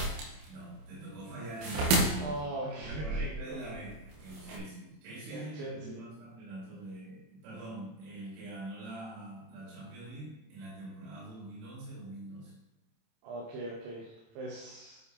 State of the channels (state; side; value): late; left; 27 ms